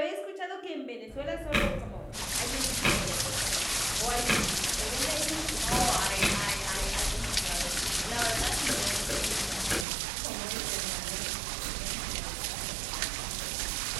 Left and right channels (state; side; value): drops out; left; at 9.9 s